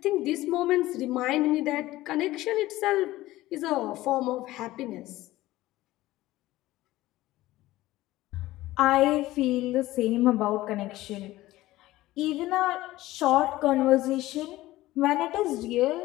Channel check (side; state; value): right; quieter; 16.9 dB